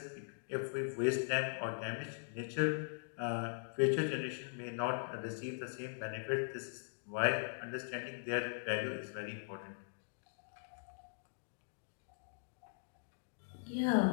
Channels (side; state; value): right; silent; digital silence